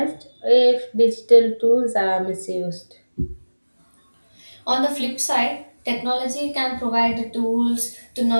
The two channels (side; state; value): both; inverted; correlation -1.00